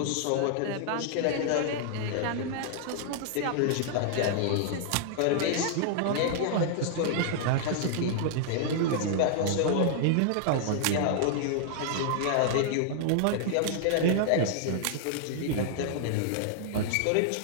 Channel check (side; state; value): both; different; correlation -0.01